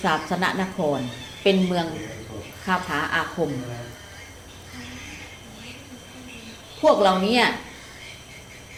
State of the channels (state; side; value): identical; both; correlation 1.00